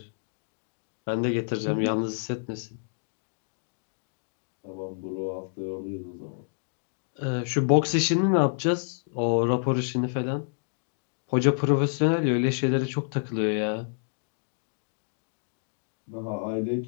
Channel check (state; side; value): silent; right; digital silence